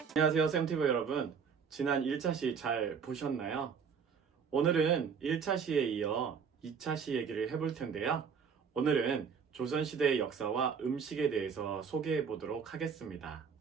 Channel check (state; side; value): quieter; left; 6.4 dB